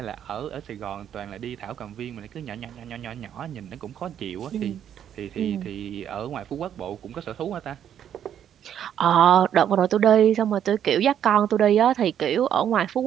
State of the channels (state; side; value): quieter; left; 9.6 dB